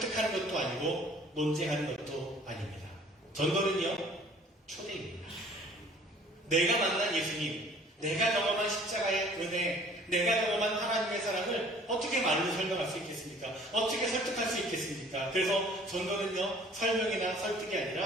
것도 아니고 논쟁하는 것도 아닙니다. 전도는요, 초대입니다. 내가 만난 예수님, 내가 경험한 십자가의 은혜, 내가 경험한 하나님의 사랑을 어떻게 말로 설명할 수 있겠습니까? 어떻게 설득할 수 있겠습니까? 그래서 전도는요, 설명이나 설득이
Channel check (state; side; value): normal; both; correlation 0.53